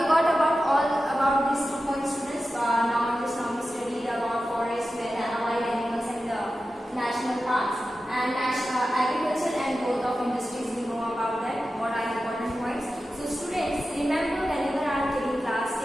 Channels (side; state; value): both; normal; correlation 0.93